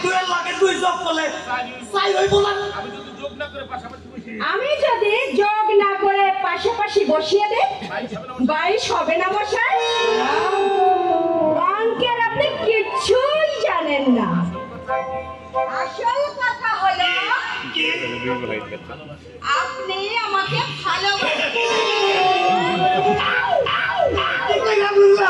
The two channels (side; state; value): both; identical; correlation 1.00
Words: আমি যদি যোগ না করে পাশাপাশি বসিয়ে দেই 22 হবে না মশাই? অঙ্কের আপনি কিছুই জানেন না। আসল কথা হলো আপনি আমাকে